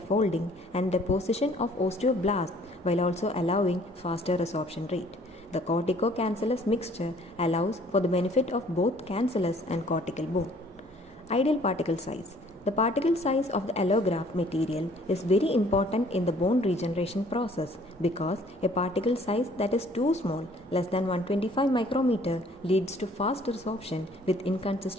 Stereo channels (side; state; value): both; normal; correlation 0.58